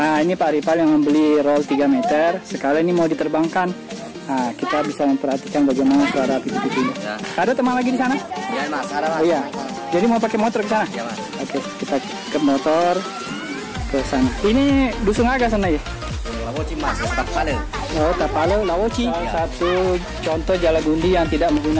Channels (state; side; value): identical; both; correlation 1.00